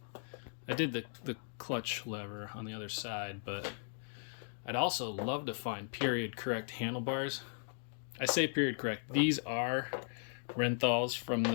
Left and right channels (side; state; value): right; silent; digital silence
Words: I did the clutch lever on the other side, but I'd also love to find period correct handlebars. I say period correct. These are Renthals from